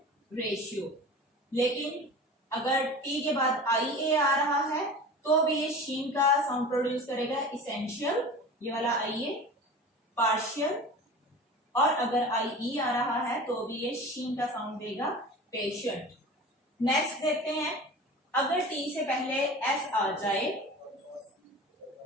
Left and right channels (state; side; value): normal; both; correlation 0.36